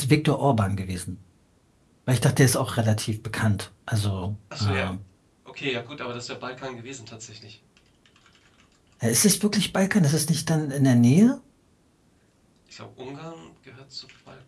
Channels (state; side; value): identical; both; correlation 1.00